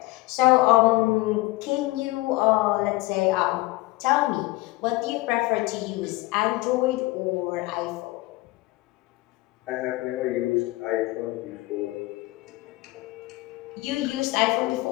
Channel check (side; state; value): right; quieter; 20.5 dB